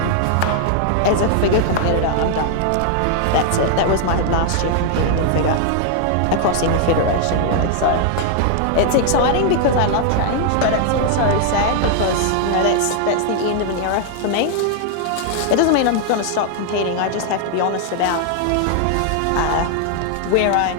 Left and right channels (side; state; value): both; different; correlation 0.00